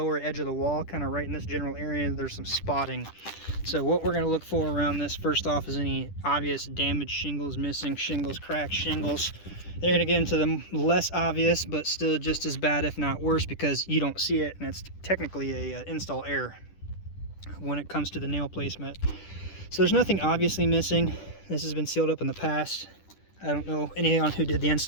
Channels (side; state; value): right; late; 10 ms